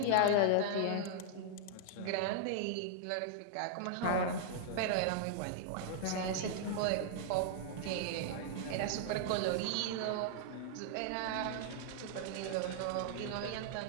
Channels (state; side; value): different; both; correlation -0.01